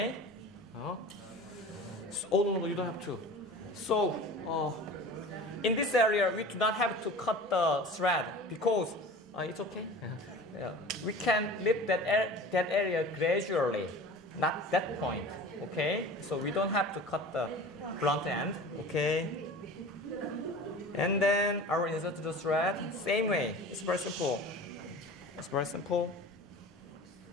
So, oh no, you don't have to. So, in this area, we do not have to cut the thread because it's okay. We can lift that area gradually, not that point. Okay, so we don't have to cut the blunt end. Okay, and then I will insert the thread same way. It's very simple. It's very simple.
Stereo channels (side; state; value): both; normal; correlation 0.38